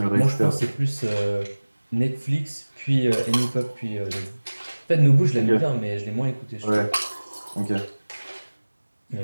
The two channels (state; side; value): inverted; both; correlation -1.00